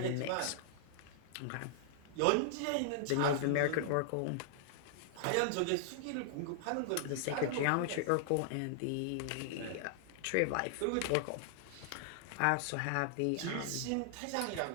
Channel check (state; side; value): different; both; correlation -0.01